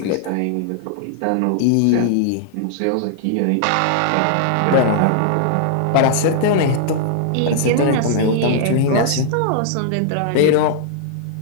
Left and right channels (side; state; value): both; different; correlation -0.01